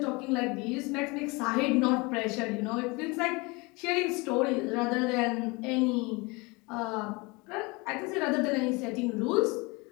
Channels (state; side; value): quieter; right; 26.3 dB